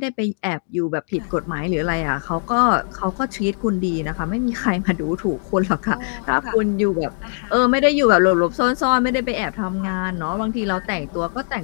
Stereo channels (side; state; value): right; silent; 61 dB below the other